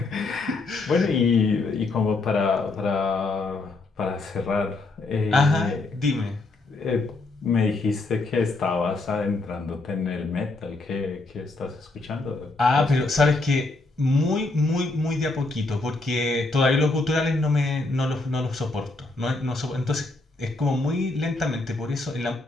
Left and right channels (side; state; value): right; quieter; 3.3 dB